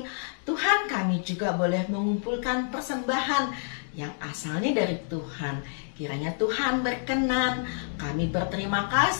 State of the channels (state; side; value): silent; right; digital silence